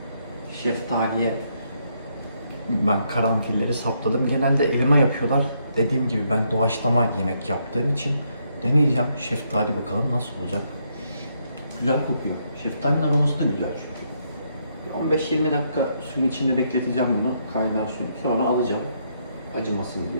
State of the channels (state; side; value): inverted; both; correlation -0.75